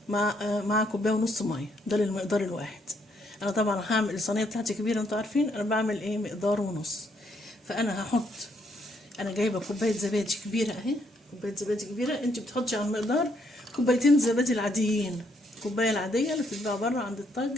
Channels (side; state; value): both; normal; correlation 0.72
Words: مع كوبايه ونص ميه. ده للمقدار الواحد. انا طبعا هعمل الصينيه بتاعتي كبيره، انتوا عارفين انا بعمل ايه مقدار ونص. فانا هحط، انا جايبه كوبايه زبادي كبيره اهي. كوبايه زبادي كبيره، انت بتحطي على المقدار كوبايتين زبادي العاديين. الكوبايه العاديه اللي بتتباع بره عند